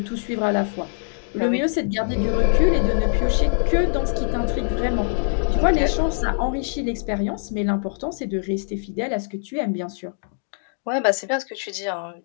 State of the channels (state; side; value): silent; right; digital silence